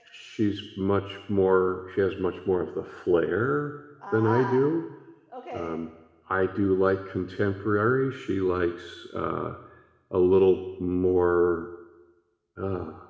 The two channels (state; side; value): identical; both; correlation 1.00